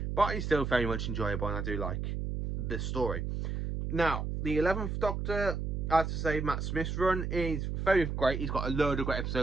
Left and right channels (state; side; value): noise; right; hum, 2 dB below the sound